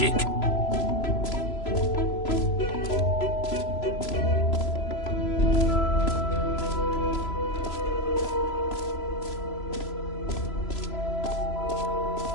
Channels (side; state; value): right; late; 3.0 ms